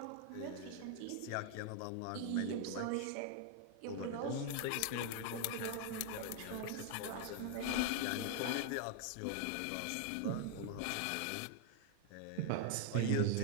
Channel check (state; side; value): different; both; correlation 0.00